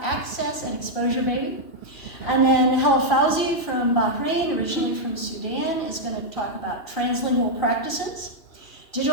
access and exposure, baby. And then Hel Fauzi from Bahrain, originally from Sudan, is going to talk about translingual practices.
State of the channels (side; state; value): right; late; 2.9 ms